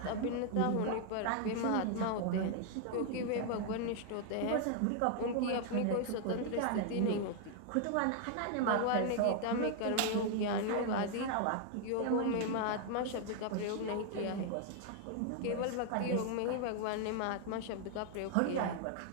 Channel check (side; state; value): both; different; correlation 0.00